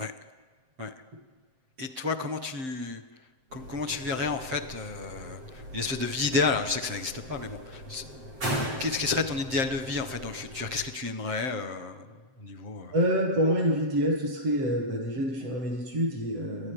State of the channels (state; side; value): late; left; 7.7 ms